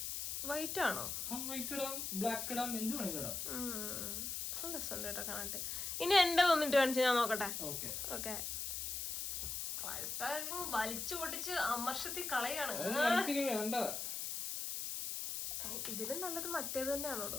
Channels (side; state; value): left; noise; hiss, 3 dB below the sound